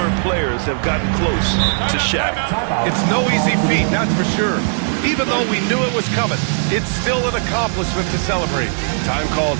players have gotten close to Shaq. It's no easy feat, that's for sure. Even though we knew it was coming, it's still an accomplishment to celebrate. Time called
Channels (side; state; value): left; silent; 66 dB below the other